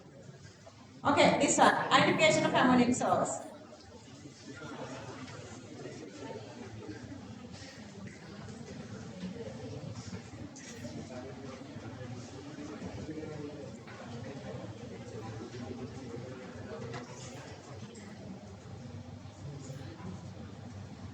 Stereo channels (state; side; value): identical; both; correlation 1.00